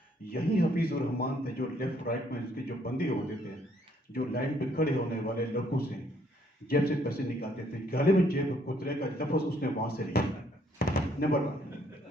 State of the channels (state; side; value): normal; both; correlation 0.67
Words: यही हफीज़ उर रहमान थे जो लेफ्ट राइट में उसके जो बंदी होते थे, जो लाइन पे खड़े होने वाले लोगों से जेब से पैसे निकालते थे। गले में जेब कुतरे का लफ्ज़ उसने वहाँ से लिया। नंबर 1।